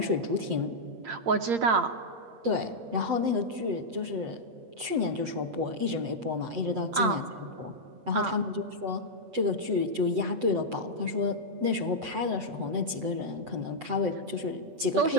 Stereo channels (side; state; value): left; late; 7.9 ms